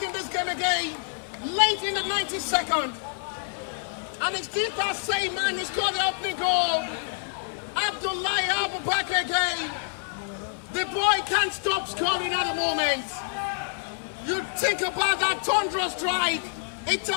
in this game again. Late in the 92nd. And it's still that same man who scored the opening goal. Abdullahi Abubakar again. The boy can't stop scoring at the moment. You think about that Tundra strike. It's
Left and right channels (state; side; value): silent; right; 58 dB below the other